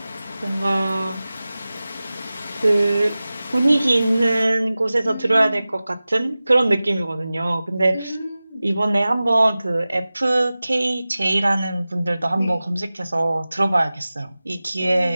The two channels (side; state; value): both; inverted; correlation -0.97